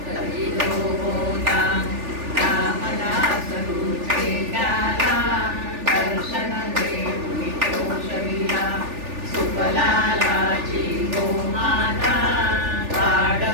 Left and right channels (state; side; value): late; left; 3.4 ms